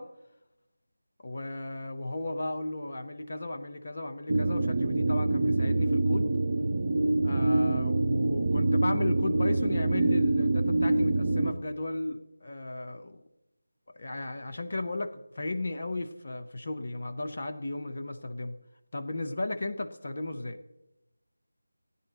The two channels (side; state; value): both; inverted; correlation -0.95